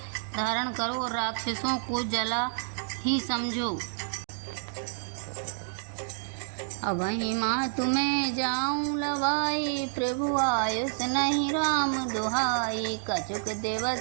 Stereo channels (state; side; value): silent; left; digital silence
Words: धारण करो और राक्षसों को जला ही समझो। अबहि माँ तुम्हें जाऊं लवाई, प्रभु आयुष नहीं राम दुहाई। कछुक